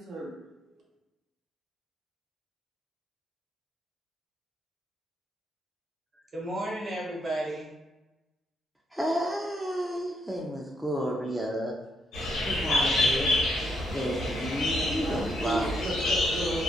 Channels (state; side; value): normal; both; correlation 0.77